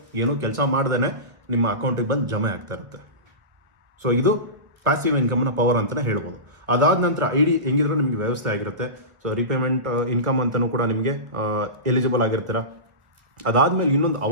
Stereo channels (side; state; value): left; late; 1.4 ms